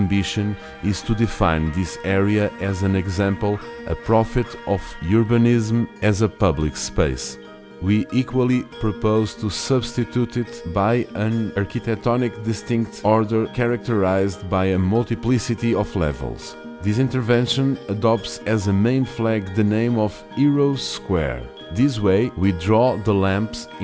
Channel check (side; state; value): both; identical; correlation 1.00